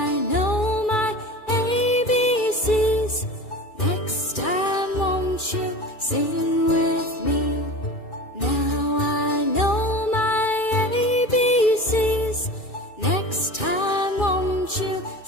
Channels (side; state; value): right; late; 2.4 ms